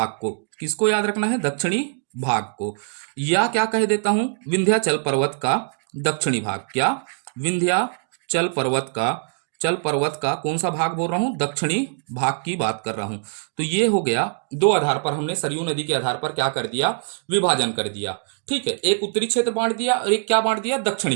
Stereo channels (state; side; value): silent; left; digital silence